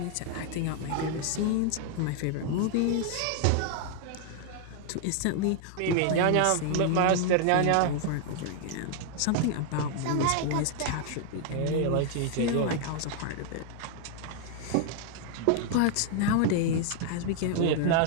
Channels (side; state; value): both; different; correlation 0.00